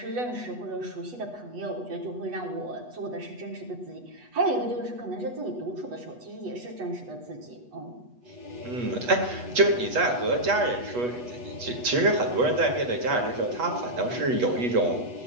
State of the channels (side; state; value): left; late; 8.2 ms